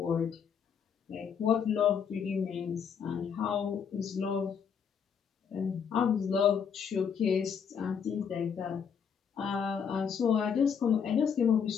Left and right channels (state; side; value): quieter; right; 7.0 dB